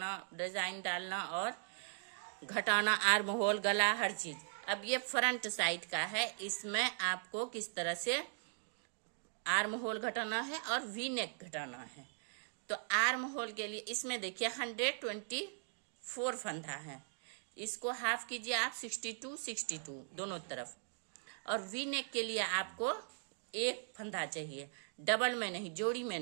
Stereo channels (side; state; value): left; silent; digital silence